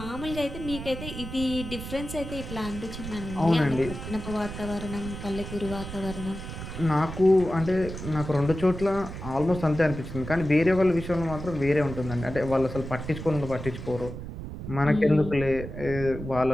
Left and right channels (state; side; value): noise; right; rumble, 9 dB below the sound